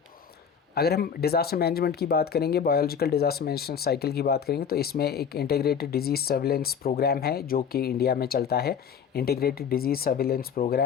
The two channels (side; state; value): right; quieter; 7.3 dB